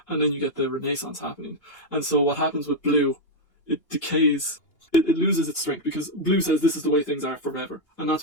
and then you get the Renaissance happening. And so what happens with blue, it decays. It loses its strength, because blue says this is the way things are forever, and that's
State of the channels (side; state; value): right; late; 2.8 ms